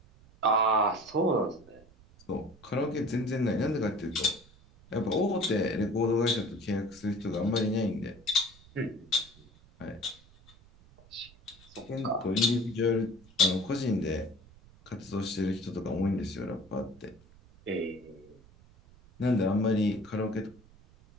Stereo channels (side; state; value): right; noise; rumble, 25 dB below the sound